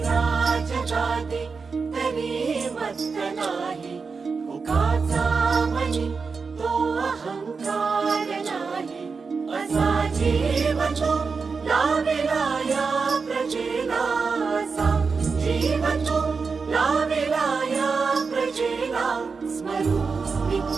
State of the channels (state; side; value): quieter; left; 4.9 dB